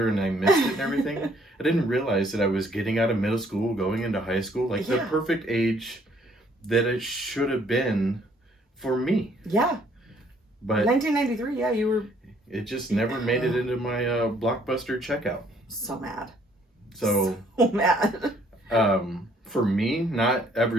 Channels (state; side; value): normal; both; correlation 0.63